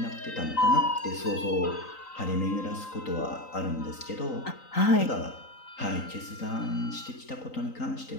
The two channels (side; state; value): right; late; 3.9 ms